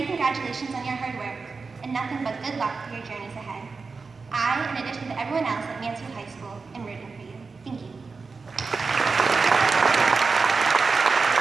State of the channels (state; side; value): quieter; left; 4.5 dB